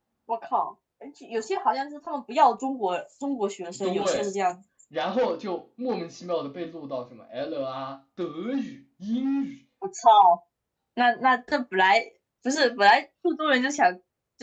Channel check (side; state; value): both; identical; correlation 1.00